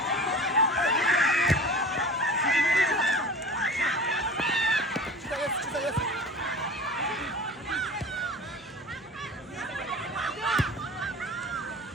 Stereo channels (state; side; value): normal; both; correlation 0.37